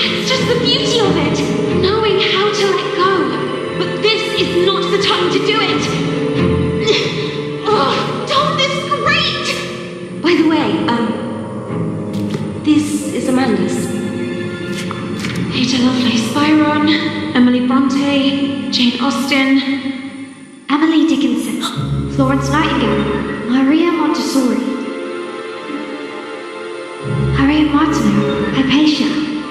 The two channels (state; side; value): identical; both; correlation 1.00